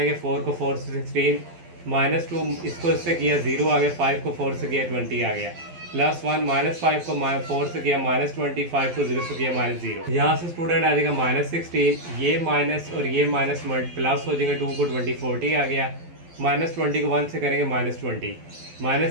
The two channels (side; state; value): left; late; 12 ms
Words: 4 को 4 से 16, -2 इसको इससे किया 0 आ गया, 5 को 4 से किया 20 आ गया, +1 -5 को 4 से किया -20, 5 को 0 से किया -0। यहाँ से स्टूडेंट आ जाएगा -16, ये माइनस और ये माइनस प्लस हो जाएगा, 2 को 20 40 आ गया, -20 को 1 से करेंगे -20,